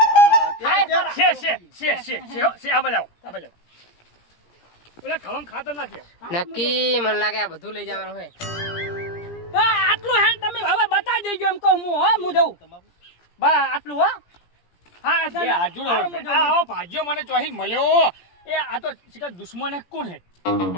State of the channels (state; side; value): late; right; 17 ms